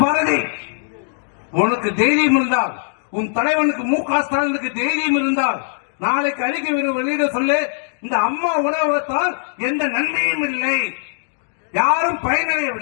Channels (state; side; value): silent; right; digital silence